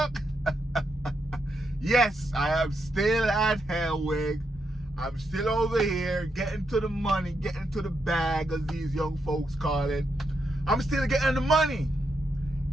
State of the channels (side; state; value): both; normal; correlation 0.81